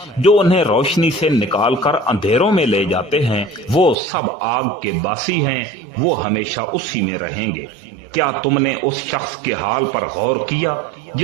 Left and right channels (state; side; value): drops out; left; at 4.0 s